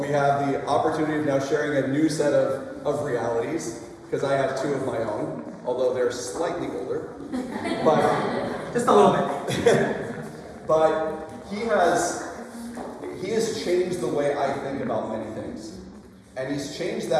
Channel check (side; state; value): both; identical; correlation 1.00